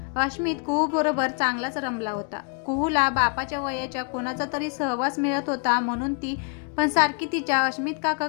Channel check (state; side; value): quieter; right; 39.5 dB